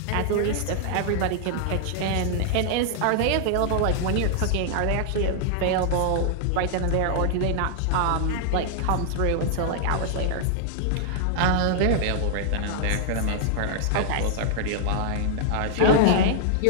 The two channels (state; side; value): different; both; correlation -0.01